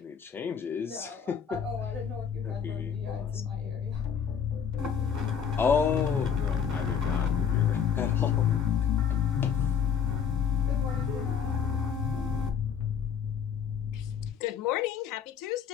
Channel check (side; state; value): right; quieter; 7.5 dB